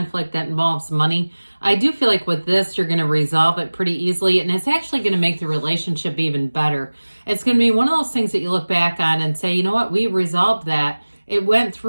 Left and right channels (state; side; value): inverted; both; correlation -1.00